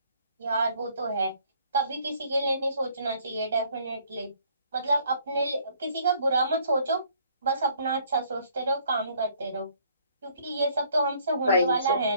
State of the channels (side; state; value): both; inverted; correlation -0.62